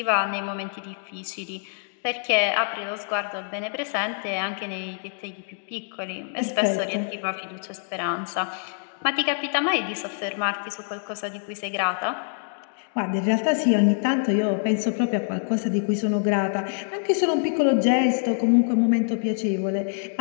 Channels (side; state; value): right; silent; digital silence